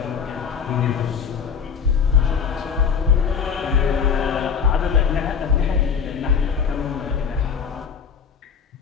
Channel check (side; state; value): right; quieter; 6.7 dB